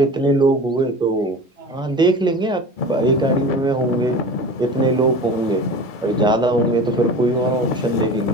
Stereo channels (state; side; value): normal; both; correlation 0.35